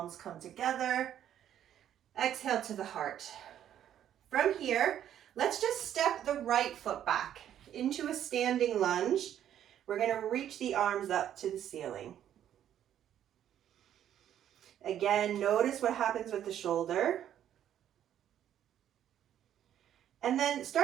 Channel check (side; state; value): left; quieter; 10.6 dB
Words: come together. Exhale to the heart. From here, let's just step the right foot back into a standing lunge. We're going to reach the arms up to the ceiling. Again, notice what happens with the shoulder. And then